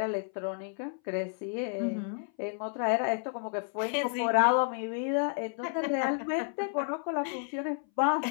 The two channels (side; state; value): right; silent; 57 dB below the other